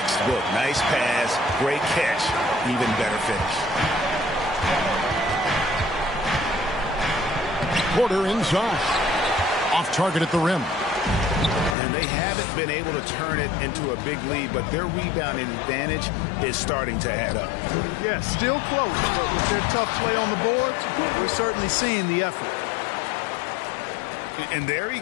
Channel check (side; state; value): right; drops out; at 11.8 s